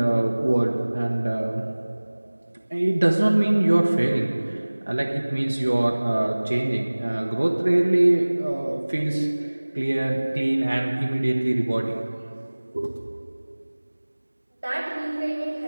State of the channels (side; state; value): both; inverted; correlation -1.00